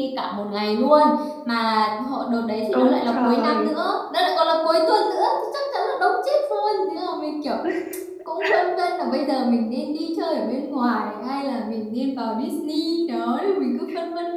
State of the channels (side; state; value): both; identical; correlation 1.00